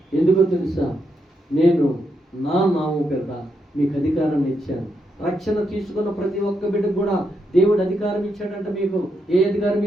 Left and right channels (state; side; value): normal; both; correlation 0.81